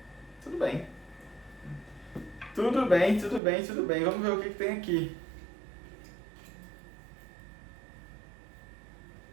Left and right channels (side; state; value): left; drops out; at 3.4 s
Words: Tudo bem. Tudo bem, tudo bem, tudo bem. Vamos ver o que tem aqui.